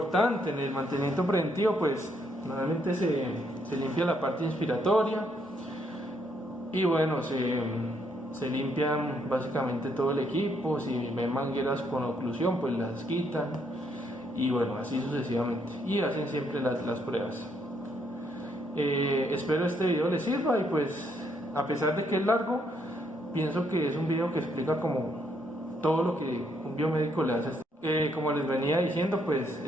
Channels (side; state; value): both; normal; correlation 0.73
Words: en el mantenimiento preventivo pues normalmente se limpia la parte inspiratoria y bueno, se limpian básicamente todo el equipo. Si ven mangueras con oclusión pues las quitan y bueno, así sucesivamente, y hacen siempre las pruebas. Espero este video les sirva y pues a pesar de que es largo, pienso que es un video que explica como todo lo que un biomédico le hace. Como les venía diciendo, pues